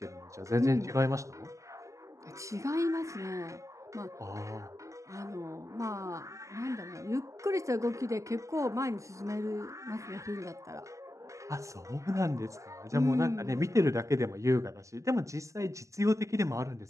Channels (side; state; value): left; late; 0.16 ms